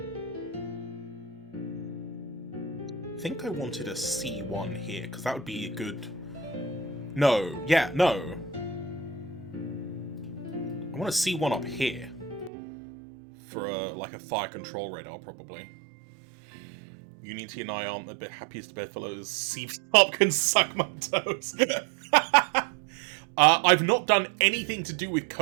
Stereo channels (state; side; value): drops out; left; at 12.5 s